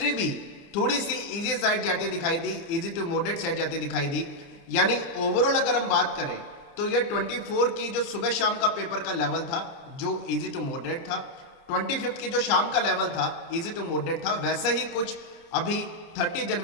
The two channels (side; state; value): right; late; 30 ms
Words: भी थोड़ी सी इजी साइड जाती दिखाई दी, इजी टू मॉडरेट साइड जाती दिखाई दी। यानी ओवरऑल अगर हम बात करें तो ये 24 की जो सुबह शाम का पेपर का लेवल था जो इजी टू मॉडरेट था, 25 की जो शाम का लेवल था इजी टू मॉडरेट था, वैसे ही कुछ अभी 30